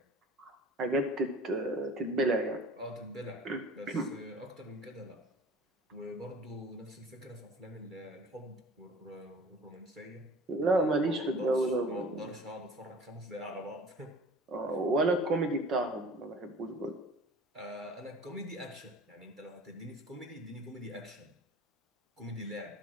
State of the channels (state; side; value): normal; both; correlation 0.45